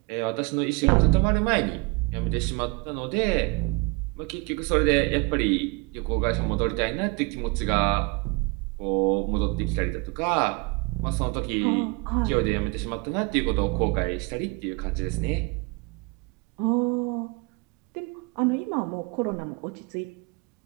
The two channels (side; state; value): left; quieter; 29.0 dB